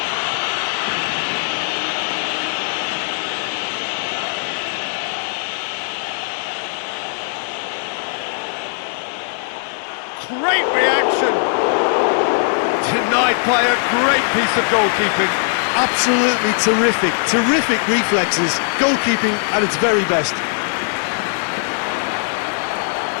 Great reaction! Denied by a great piece of goalkeeping. Absolutely terrific, terrific reflexes, goalkeeping at its very best.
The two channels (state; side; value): silent; right; 66 dB below the other